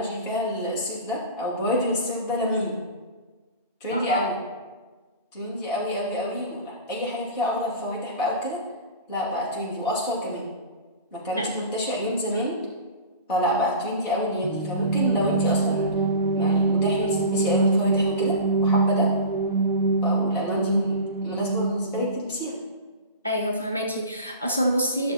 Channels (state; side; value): inverted; both; correlation -0.34